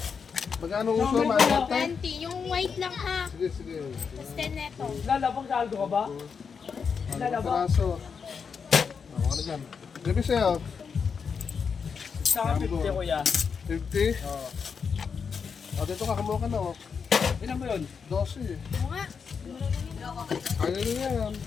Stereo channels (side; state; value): right; quieter; 6.0 dB